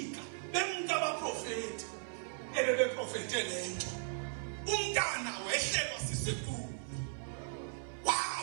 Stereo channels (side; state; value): left; silent; 53 dB below the other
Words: bemka abaprofeti ebebeprofete lento. Umntana wehlelwa sisifundo